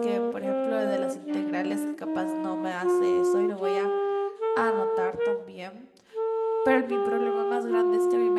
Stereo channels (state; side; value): identical; both; correlation 1.00